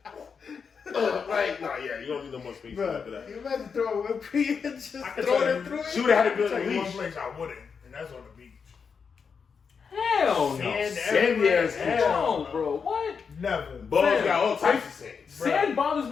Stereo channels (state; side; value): quieter; right; 5.9 dB